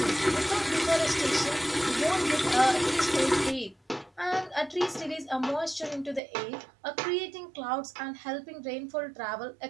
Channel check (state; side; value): drops out; left; at 6.2 s